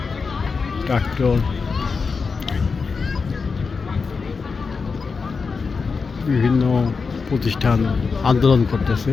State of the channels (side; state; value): right; quieter; 4.9 dB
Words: ট্রাক্টর, বিভিন্ন প্রতিষ্ঠান আন্দোলন করতেছে